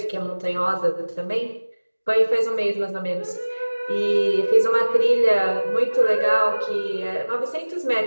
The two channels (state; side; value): inverted; both; correlation -1.00